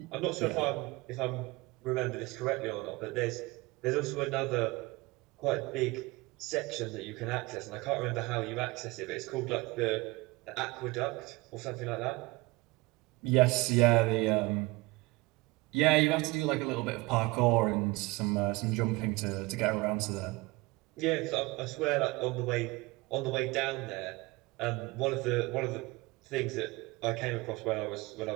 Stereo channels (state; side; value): quieter; left; 22.7 dB